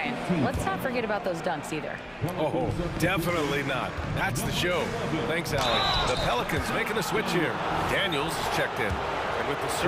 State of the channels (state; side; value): identical; both; correlation 1.00